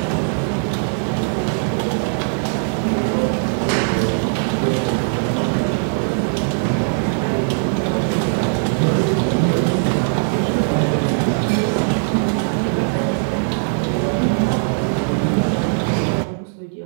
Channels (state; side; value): silent; left; digital silence